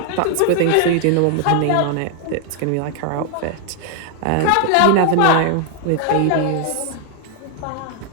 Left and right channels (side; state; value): both; different; correlation 0.00